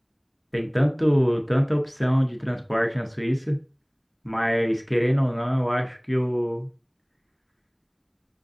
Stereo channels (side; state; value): both; identical; correlation 1.00